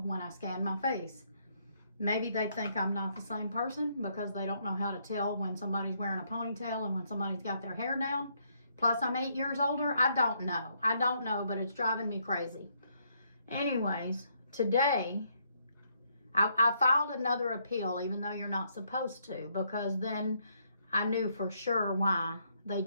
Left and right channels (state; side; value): inverted; both; correlation -0.72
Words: when I scanned my face, maybe they think I'm not the same person because they don't know how to tell when somebody's wearing a ponytail and when somebody's got their hair down. Plus, I'm 8 years older. I don't know, but it's driving me crazy. Anyways, today, I filed another appeal, even though you're not supposed to, because then I knew for sure why they